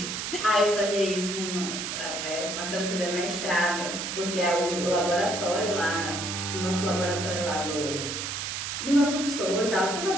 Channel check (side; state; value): right; noise; hiss, 4 dB below the sound